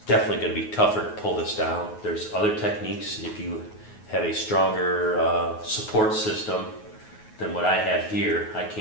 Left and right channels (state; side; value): late; right; 9.4 ms